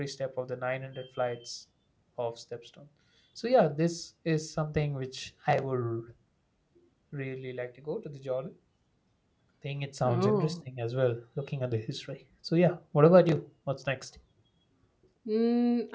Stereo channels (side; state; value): both; identical; correlation 1.00